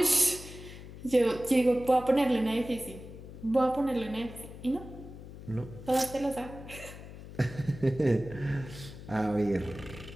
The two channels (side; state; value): left; noise; hum, 14 dB below the sound